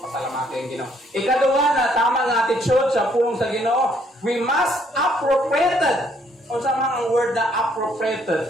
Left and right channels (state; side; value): normal; both; correlation 0.67